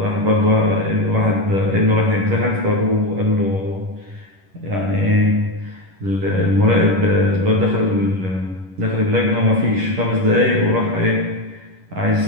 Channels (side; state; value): left; late; 11 ms